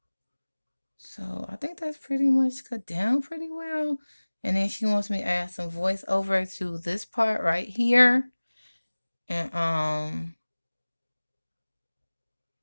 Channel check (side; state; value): both; inverted; correlation -1.00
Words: So I think that's pretty much cut down pretty well. And then she wants me to add some voiceover to this part right here. And